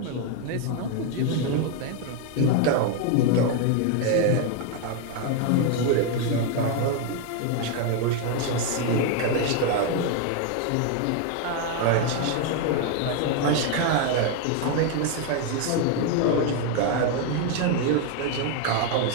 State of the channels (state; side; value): different; both; correlation 0.01